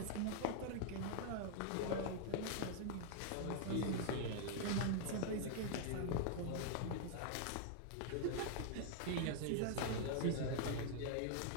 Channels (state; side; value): different; both; correlation -0.01